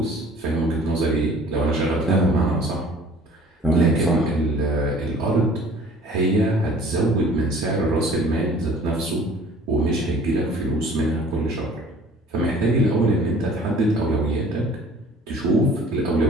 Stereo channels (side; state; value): both; normal; correlation 0.50